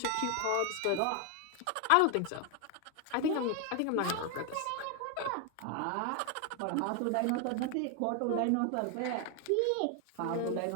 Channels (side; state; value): both; different; correlation 0.00